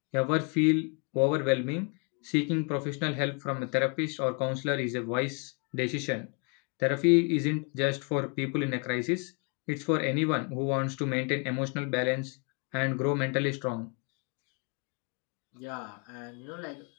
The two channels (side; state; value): right; quieter; 35.2 dB